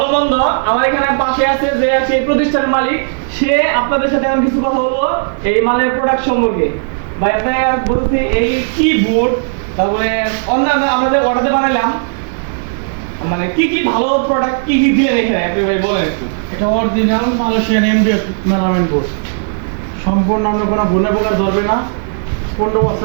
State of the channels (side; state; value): left; silent; digital silence